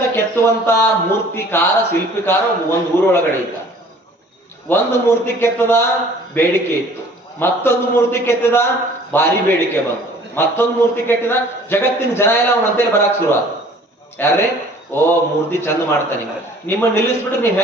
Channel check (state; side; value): normal; both; correlation 0.52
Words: ಕೆತ್ತುವಂತ ಮೂರ್ತಿಕಾರ ಶಿಲ್ಪಿಕಾರ ಒಂದು ಊರೊಳಗಡೆ ಇದ್ದ. ಒಂದು ಮೂರ್ತಿ ಕೆತ್ತದ, ಬೇಡಿಕೆ ಇತ್ತು. ಮತ್ತೊಂದು ಮೂರ್ತಿ ಕೆತ್ತಿದ, ಭಾರಿ ಬೇಡಿಕೆ ಬಂತು. ಮತ್ತೊಂದು ಮೂರ್ತಿ ಕೆತ್ತಿದ, ಜಗತ್ತಿನ ಜನ ಎಲ್ಲ ಅವನಂತೇಳಿ ಬರಕ್ ಶುರು ಆದ. ಯಾರೇ ಓ ಮೂರ್ತಿ ಚಂದ ಮಾಡ್ತಾನೆ, ನಿಮ್ಮ ನಿಲ್ಲಿಸ್ಬಿಟ್ಟು ನೀವ್